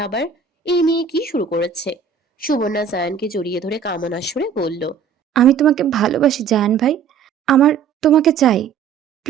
আবার এই মেয়ে কি শুরু করেছে। সুবর্ণা জায়ানকে জড়িয়ে ধরে কামনার সুরে বলল। আমি তোমাকে ভালোবাসি জায়ান ভাই, আমার তোমাকে চাই।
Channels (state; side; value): quieter; left; 6.7 dB